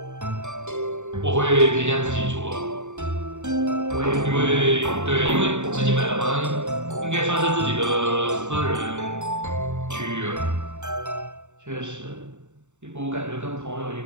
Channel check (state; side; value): late; left; 0.84 ms